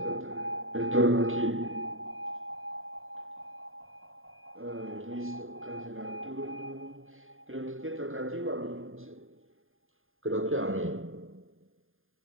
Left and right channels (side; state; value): left; late; 0.59 ms